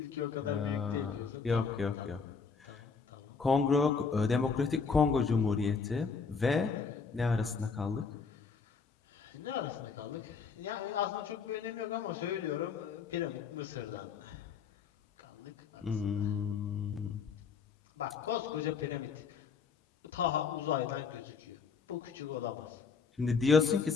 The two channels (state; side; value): quieter; right; 5.5 dB